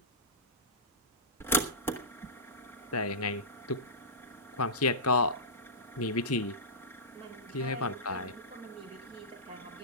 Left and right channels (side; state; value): both; normal; correlation -0.15